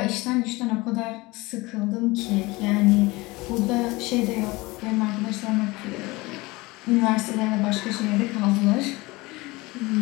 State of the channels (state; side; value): quieter; right; 22.4 dB